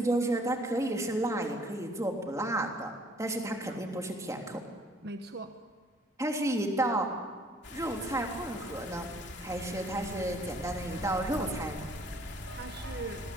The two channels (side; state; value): both; normal; correlation 0.59